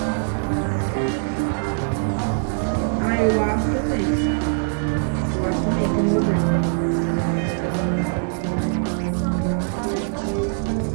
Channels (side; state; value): left; silent; digital silence